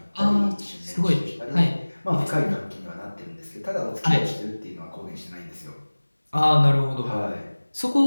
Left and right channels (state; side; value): inverted; both; correlation -1.00